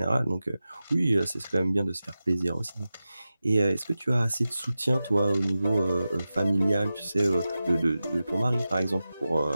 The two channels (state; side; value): inverted; both; correlation -0.94